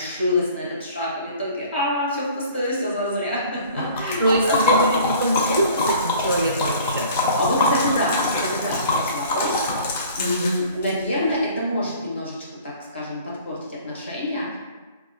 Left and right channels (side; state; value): both; inverted; correlation -0.48